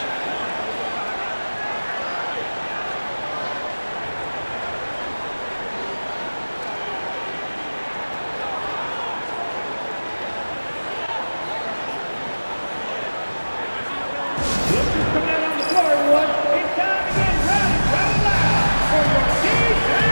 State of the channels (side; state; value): both; inverted; correlation -1.00